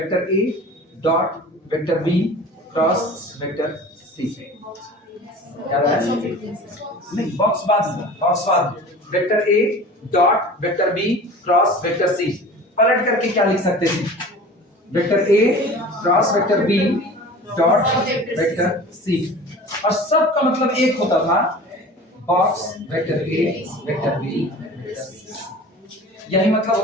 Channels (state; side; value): normal; both; correlation 0.40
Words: ए dot vector B cross vector C, याद आया? नहीं, बॉक्स बाद वेक्टर ए dot vector B cross vector C, पलट करके क्या लिख सकते थे, वेक्टर ए cross vector B dot vector सी, और सब का मतलब एक होता था, बॉक्स वेक्टर ए वेक्टर बी वेक्टर सी, यही मतलब